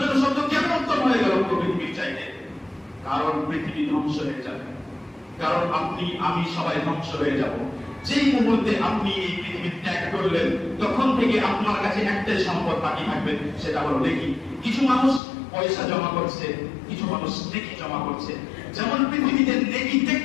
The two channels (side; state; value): right; drops out; at 15.2 s